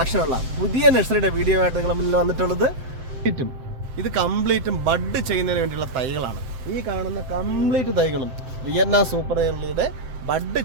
പുതിയ നഴ്സറിയുടെ വീഡിയോ ആയിട്ട് നിങ്ങളുടെ മുന്നിൽ വന്നിട്ടുള്ളത്. ഇത് കംപ്ലീറ്റും ബഡ് ചെയ്യുന്നതിന് വേണ്ടിയുള്ള തൈകളാണ്. ഈ കാണുന്ന കംപ്ലീറ്റ് തൈകളും വിയറ്റ്നാം സൂപ്പർ ഏർലിയുടെ ബഡ്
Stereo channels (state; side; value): late; left; 7.7 ms